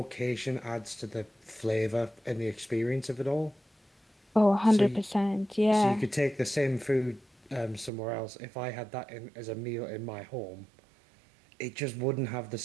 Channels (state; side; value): drops out; left; at 7.9 s